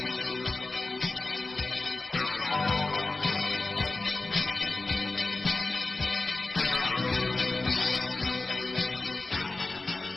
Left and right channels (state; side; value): quieter; right; 3.2 dB